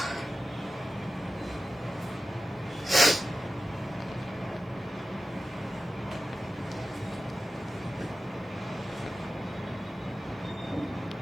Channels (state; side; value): normal; both; correlation 0.94